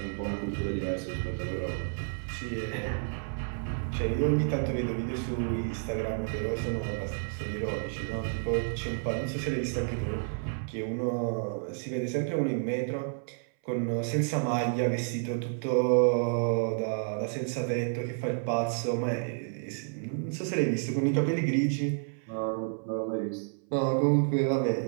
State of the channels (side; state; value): left; silent; 57 dB below the other